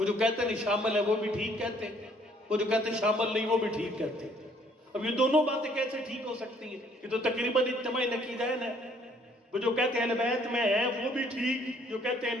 جو کہتے ہیں شامل ہے وہ بھی ٹھیک کہتے ہیں، وہ جو کہتے ہیں شامل نہیں وہ بھی ٹھیک کہتے ہیں۔ اب یہ دونوں باتیں کیسے ٹھیک ہو سکتی ہیں؟ یہ تو تقریباً اجتماعی نقیدین ہے۔ وہ جو کہتے ہیں اہل بیت میں ہیں وہ بھی ٹھیک، جو کہتے ہیں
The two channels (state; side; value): normal; both; correlation 0.63